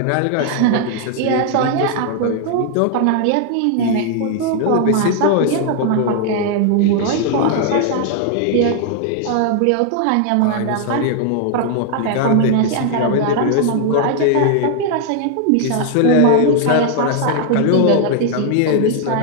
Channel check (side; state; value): both; different; correlation 0.00